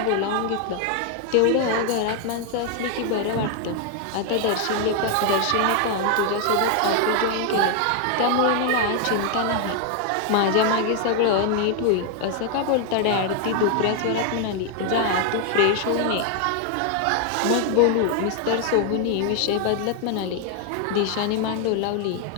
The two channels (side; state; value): both; different; correlation 0.00